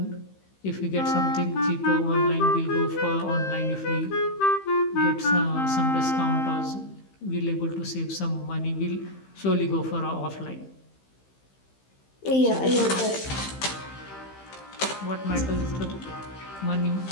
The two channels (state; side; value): late; right; 15 ms